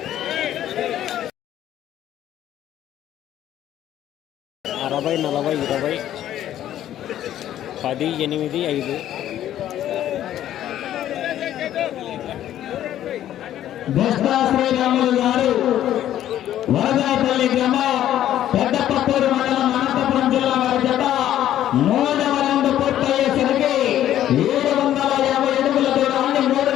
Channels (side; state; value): right; quieter; 12.0 dB